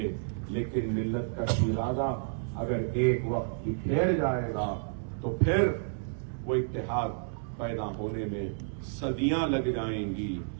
لیکن ملت کا ارادہ اگر ایک وقت بکھیر جائے گا تو پھر وہ اتحاد پیدا ہونے میں صدیاں لگ جائیں گی۔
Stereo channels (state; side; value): silent; left; digital silence